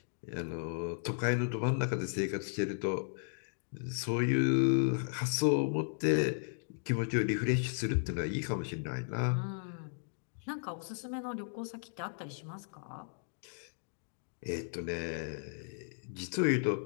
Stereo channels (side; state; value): right; silent; digital silence